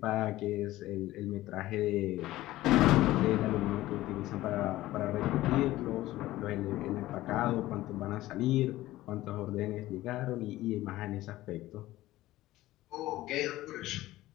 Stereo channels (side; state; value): right; quieter; 16.4 dB